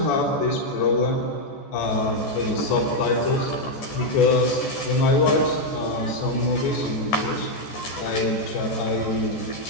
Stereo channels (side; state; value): right; late; 14 ms